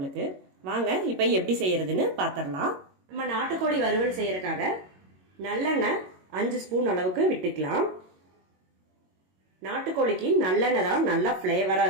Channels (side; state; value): left; late; 22 ms